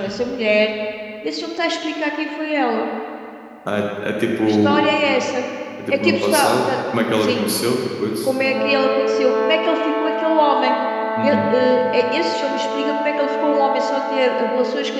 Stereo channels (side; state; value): both; identical; correlation 1.00